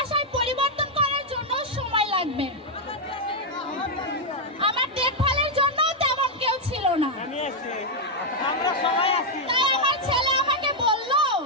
পরিবর্তন করার জন্য সময় লাগবে। আমার দেখভালের জন্য তেমন কেউ ছিল না। আমি আছি, আমরা সবাই আছি। তাই আমার ছেলে আমাকে বলল,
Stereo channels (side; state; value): both; normal; correlation -0.02